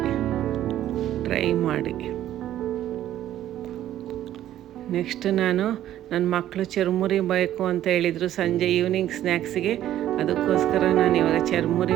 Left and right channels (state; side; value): quieter; left; 12.4 dB